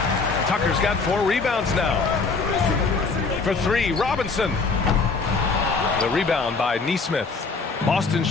Tucker's got 4 rebounds now. For 3, Robinson. The rebound by Nesmith. Boston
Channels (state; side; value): quieter; right; 4.4 dB